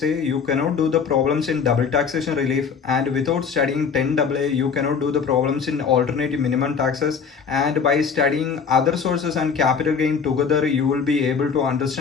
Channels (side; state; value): right; quieter; 6.2 dB